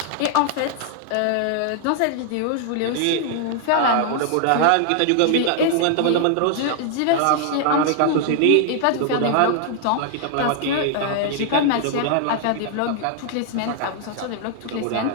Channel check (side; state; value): both; different; correlation 0.00